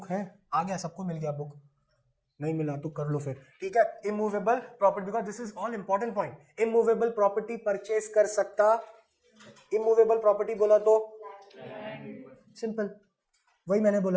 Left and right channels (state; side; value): identical; both; correlation 1.00